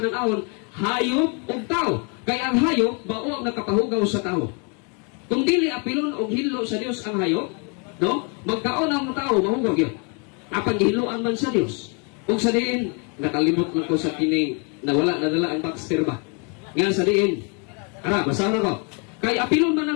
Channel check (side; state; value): right; quieter; 35.7 dB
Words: hayop ug tao. Kaya ang hayop bao ang nakapahugaw sa tao. Kung dili apilon og hinlo sa Dios ang hayop, no? Magkaon ang tao mahugaw gyud. Apan gihiluan man sa Dios. Ug sa diin nakalimot man ko sa kining nawala nadala ang Baxter ba. Nga sa diin. Ara, basahan ko. Kay apilon man